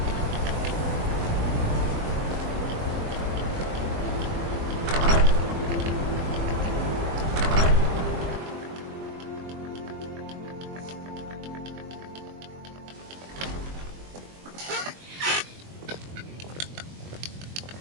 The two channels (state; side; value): late; left; 22 ms